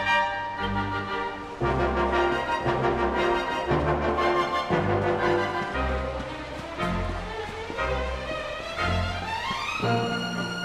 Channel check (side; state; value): both; identical; correlation 1.00